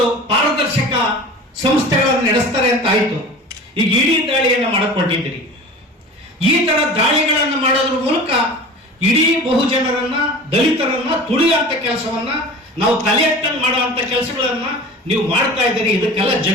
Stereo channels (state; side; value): normal; both; correlation 0.38